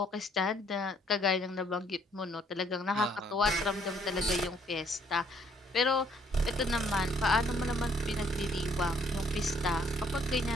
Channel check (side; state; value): both; normal; correlation 0.65